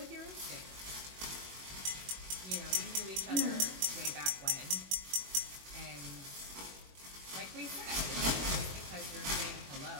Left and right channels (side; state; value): left; late; 21 ms